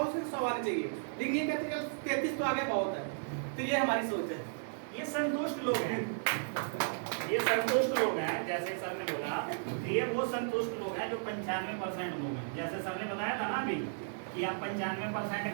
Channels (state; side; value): silent; left; 55 dB below the other